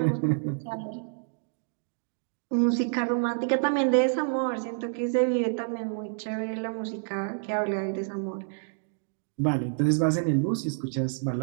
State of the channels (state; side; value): silent; left; digital silence